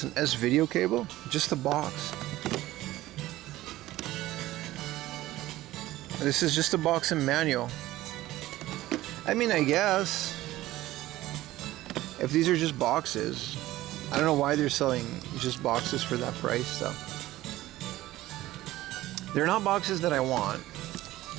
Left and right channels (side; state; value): left; quieter; 16.2 dB